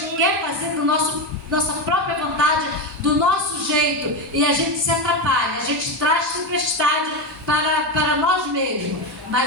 quer fazer do nossa própria vontade, do nosso jeito, e a gente se atrapalha, a gente traz tempestade para nós mesmos.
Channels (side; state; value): both; normal; correlation 0.13